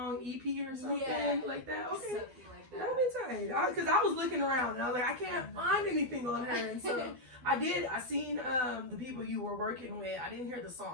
EP or something like that. Okay. Something like that. That'll be tight. Because I was looking around and I was like, I can't find anything on her. And so I seen the people you were working with. I didn't hear the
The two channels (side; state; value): left; late; 12 ms